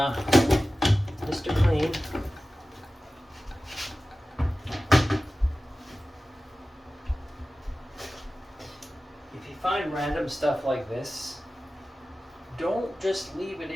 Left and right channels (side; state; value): both; normal; correlation 0.95